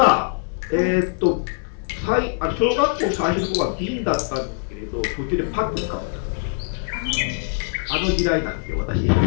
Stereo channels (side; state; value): right; silent; digital silence